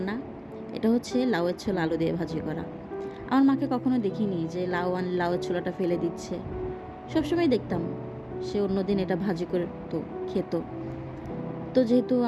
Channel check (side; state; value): both; identical; correlation 1.00